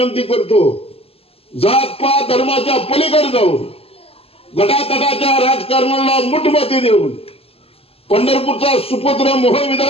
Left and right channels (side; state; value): right; late; 0.28 ms